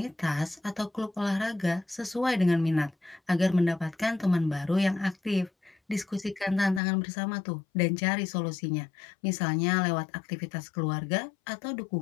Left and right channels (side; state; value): right; drops out; at 6.8 s